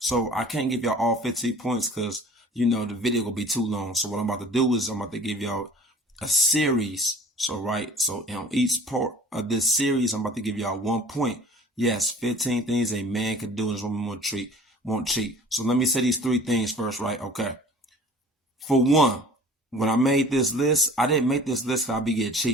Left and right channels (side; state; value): both; normal; correlation 0.47